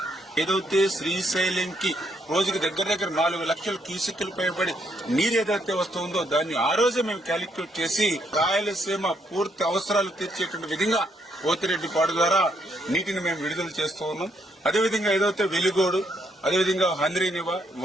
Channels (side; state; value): both; normal; correlation 0.74